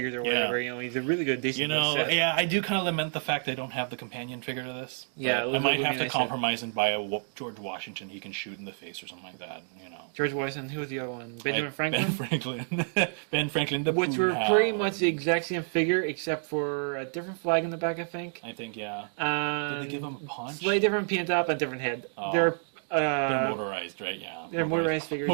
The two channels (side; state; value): left; silent; 58 dB below the other